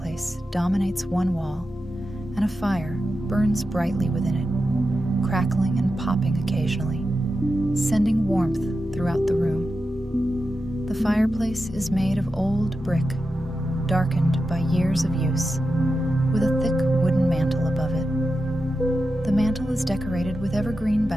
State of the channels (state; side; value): normal; both; correlation 0.90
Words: dominates one wall, and a fire burns brightly within it, crackling and popping occasionally, sending warmth throughout the room. The fireplace is made of old brick, darkened by years of use, with a thick wooden mantel above it. The mantel is decorated with evergreen